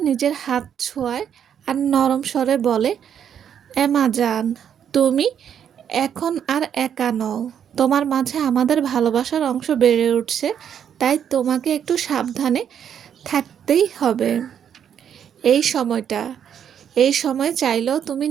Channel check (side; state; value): left; quieter; 8.7 dB